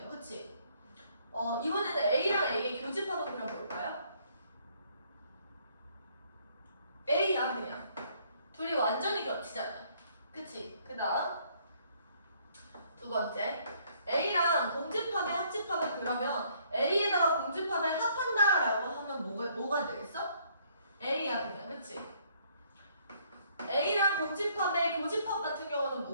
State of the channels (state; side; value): inverted; both; correlation -0.65